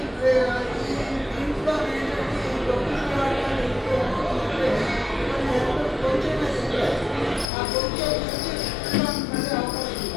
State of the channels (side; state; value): right; drops out; at 7.5 s